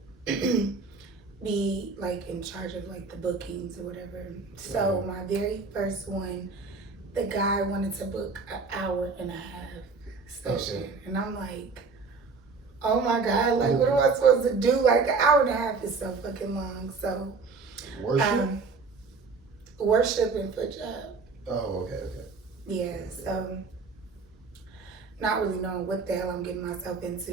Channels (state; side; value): quieter; left; 4.4 dB